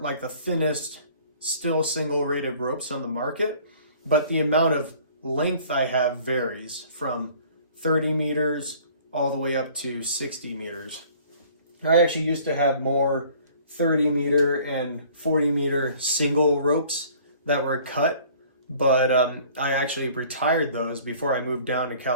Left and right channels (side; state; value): both; inverted; correlation -0.52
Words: the thinnest, still single rated ropes on the market, but the amount of length I have varies from 30 meters all the way up to 60 meters. I actually used to have more 30 meter and 40 meter single ropes that were cut, but I actually retired those before I moved down to